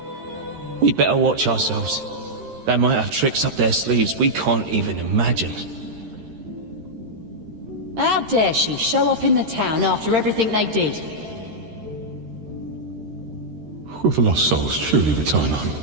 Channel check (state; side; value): late; left; 13 ms